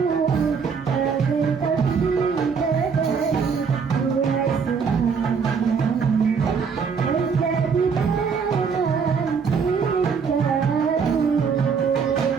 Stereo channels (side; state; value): left; quieter; 5.9 dB